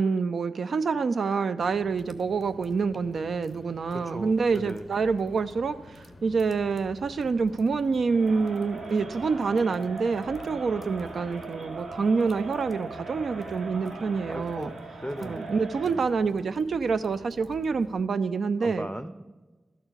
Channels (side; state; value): left; quieter; 4.4 dB